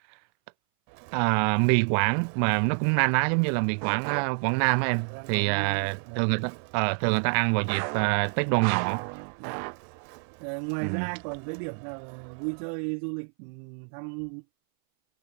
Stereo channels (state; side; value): silent; left; 60 dB below the other